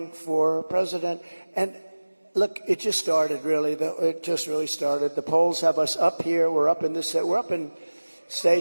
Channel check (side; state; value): both; inverted; correlation -1.00